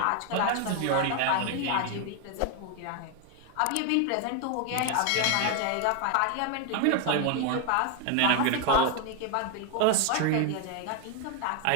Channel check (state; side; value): different; both; correlation 0.01